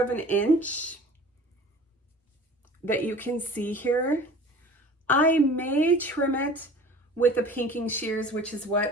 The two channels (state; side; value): normal; both; correlation 0.43